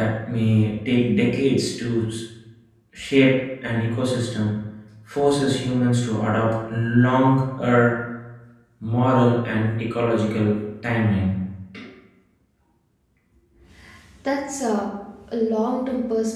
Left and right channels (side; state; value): both; identical; correlation 1.00